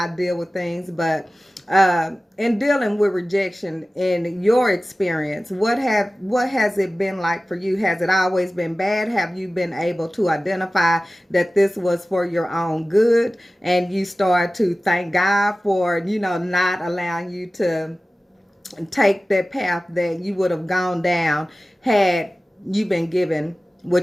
deal with things. But in dealing with rejection, in your experience, what has it been like for you? Has it always been bad? Have you been able to identify that this was for your own good, and you start to thank God for not allowing you to take that path that you would have gone down had you been given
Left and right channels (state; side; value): normal; both; correlation 0.96